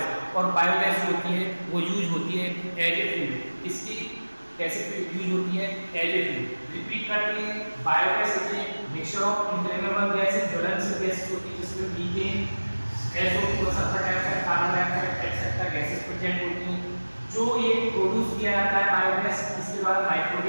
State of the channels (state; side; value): inverted; both; correlation -1.00